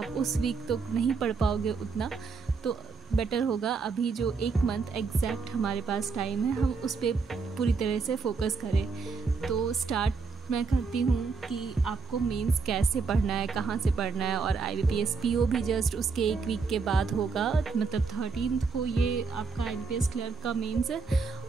उस वीक तो नहीं पढ़ पाओगे उतना। तो बेटर होगा अभी जो 1 मंथ एग्जैक्ट हमारे पास टाइम है हम उस पर पूरी तरह से फोकस करें। तो स्टार्ट मैं करती हूँ कि आपको मेंस कैसे पढ़ना है, कहाँ से पढ़ना है। और IBPS PO भी जस्ट उसके 1 वीक के बाद होगा, मतलब 13 को ये आपका IBPS क्लर्क का मेंस है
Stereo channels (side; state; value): left; quieter; 4.6 dB